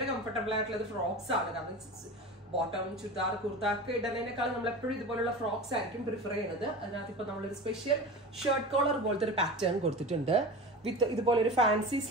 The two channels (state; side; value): normal; both; correlation 0.31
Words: കംഫർട്ടബിൾ ആയിട്ടുള്ളത് ഫ്രോക്സ് ആണ്. കാരണം ബോട്ടം ചുരിദാർ കുർത്ത ഒക്കെ ഇടുന്നതിനേക്കാൾ നമ്മൾ എപ്പോഴും ഇതുപോലുള്ള ഫ്രോക്സ് ആയിരിക്കും പ്രിഫർ ചെയ്യുന്നത്. അതിനകത്ത് ഇപ്പൊ നമ്മളൊരു സ്പെഷ്യൽ ഷർട്ട് കോളർ പോലത്തെ ഒരു പാറ്റേൺ കൊടുത്തിട്ടുണ്ട്. വിത്ത് ഇതുപോലെ ഒരു ഫാൻസി